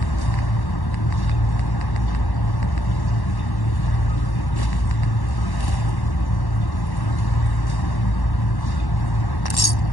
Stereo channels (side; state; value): right; late; 1.1 ms